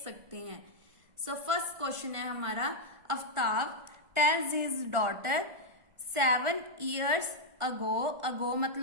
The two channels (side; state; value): left; late; 1.5 ms